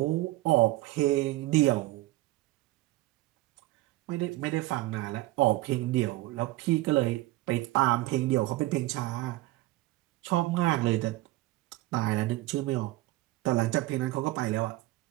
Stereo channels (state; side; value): quieter; left; 18.5 dB